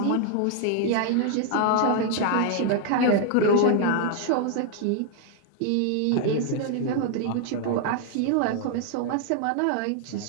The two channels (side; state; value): both; different; correlation 0.00